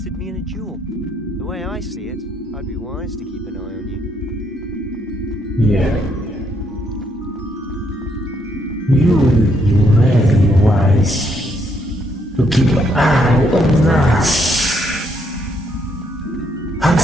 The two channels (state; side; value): normal; both; correlation 0.74